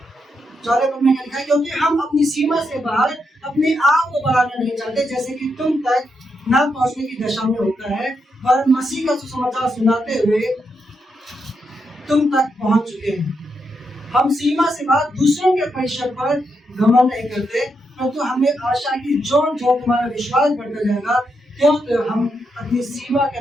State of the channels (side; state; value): both; normal; correlation 0.82